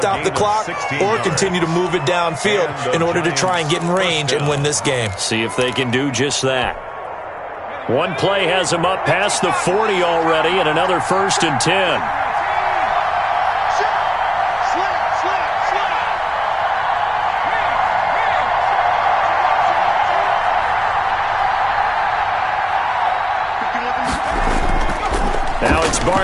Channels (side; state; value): both; identical; correlation 1.00